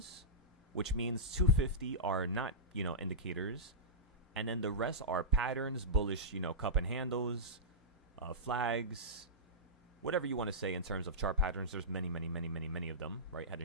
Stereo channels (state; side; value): normal; both; correlation -0.15